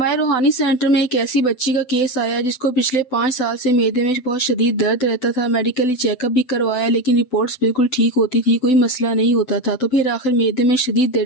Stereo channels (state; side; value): late; right; 7.9 ms